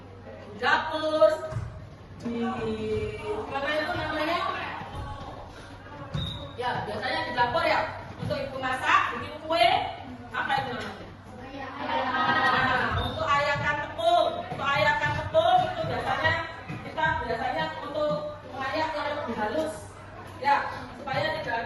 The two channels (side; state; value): both; identical; correlation 1.00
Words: dapur, di mana itu namanya? Ya, biasanya di dapur ya. Untuk ibu masak, bikin kue, apa itu namanya? Nah, untuk ayakan tepung itu biasanya untuk mengayak yang lebih halus, ya, supaya